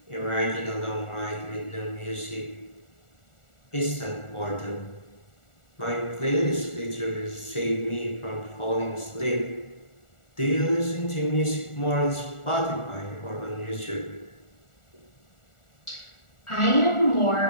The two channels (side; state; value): right; late; 1.4 ms